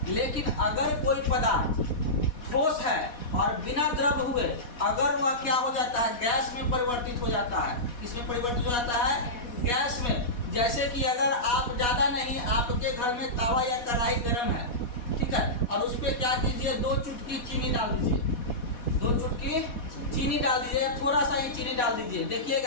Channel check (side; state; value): right; late; 4.1 ms